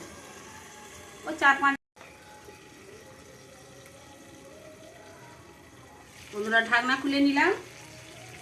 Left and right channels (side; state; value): both; identical; correlation 1.00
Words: ওই 4-5। বন্ধুরা ঢাকনা খুলে নিলাম।